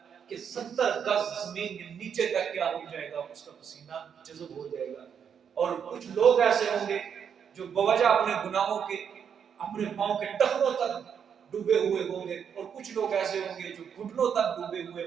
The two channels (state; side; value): quieter; left; 7.6 dB